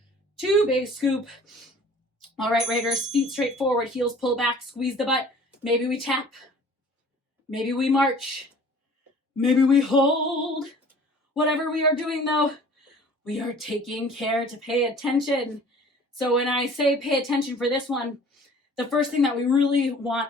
2, big scoop. All right, Raiders, feet straight forward, heels pull back, squeeze the butt. Maybe we tap. Maybe we march. Maybe we hold. Whatever we are doing, though, we are taking care to pay attention. So when I say pay attention for this one, the first thing that we really want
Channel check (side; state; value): both; normal; correlation 0.49